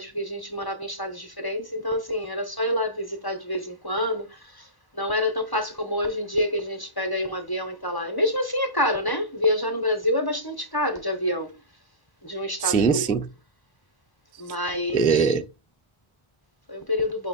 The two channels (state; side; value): late; right; 1.1 ms